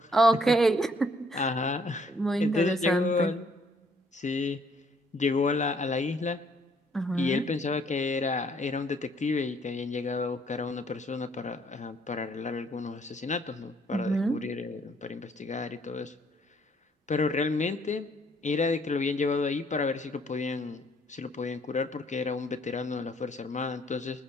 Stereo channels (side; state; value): both; normal; correlation 0.65